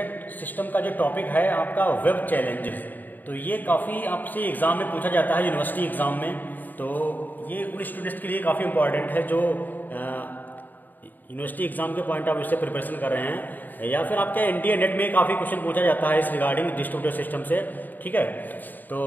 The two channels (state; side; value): late; right; 0.087 ms